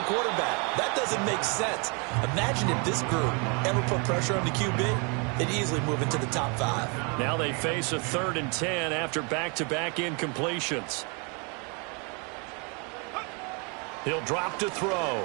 quarterback. That doesn't make sense. Imagine if this group ever put pressure on the QB, they'd easily move into the top 5. Now they face a 3rd and 10 after back-to-back incompletions. He'll drop to throw.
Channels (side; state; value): left; quieter; 33.9 dB